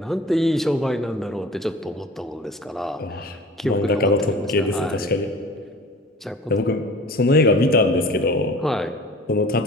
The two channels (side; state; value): both; normal; correlation 0.42